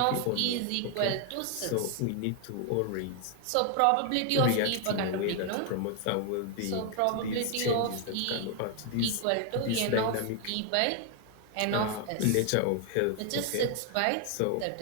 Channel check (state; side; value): different; both; correlation 0.00